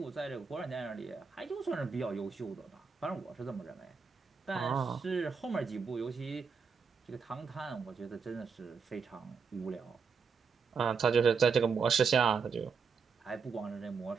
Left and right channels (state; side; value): quieter; left; 5.5 dB